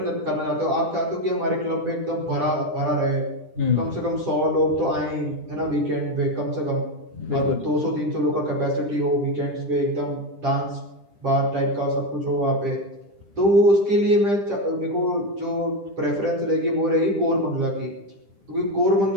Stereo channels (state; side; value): late; left; 10 ms